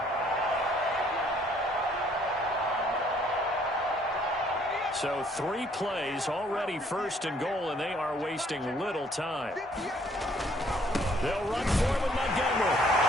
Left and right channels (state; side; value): normal; both; correlation 0.63